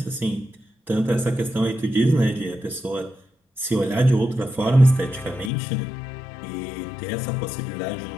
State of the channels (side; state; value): right; drops out; at 5.5 s